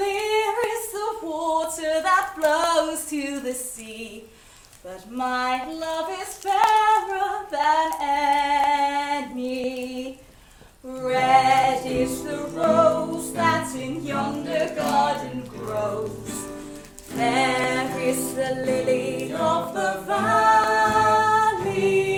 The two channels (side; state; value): both; identical; correlation 1.00